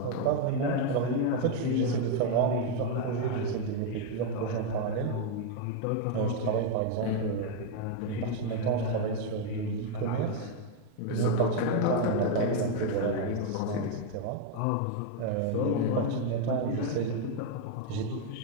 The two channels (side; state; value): both; different; correlation 0.01